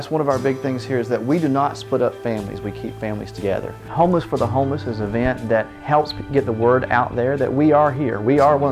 one of our big things here, is that we do not split up families, we keep families together. Homeless for the Homeless is an event that helps get the word out there that we are here. We are one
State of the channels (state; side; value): identical; both; correlation 1.00